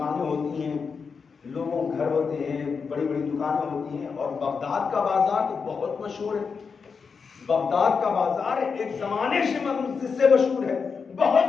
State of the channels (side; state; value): right; quieter; 5.5 dB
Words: ہوتی ہیں، لوگوں کے گھر ہوتے ہیں، بڑی بڑی دکانیں ہوتی ہیں، اور بغداد کا بازار تو بہت مشہور ہے۔ بغداد کا بازار ایک زمانے سے مشہور ہے،